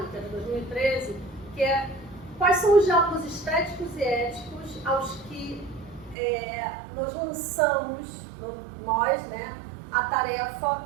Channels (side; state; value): left; drops out; at 6.2 s